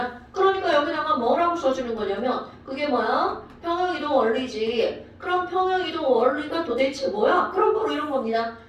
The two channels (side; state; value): both; identical; correlation 1.00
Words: 그러니까 여기다가 뭐라고 써주는 거냐면 그게 뭐야? 평형이동 원리지. 그럼 평형이동 원리가 도대체 뭐야? 그럼 바로 이런 겁니다.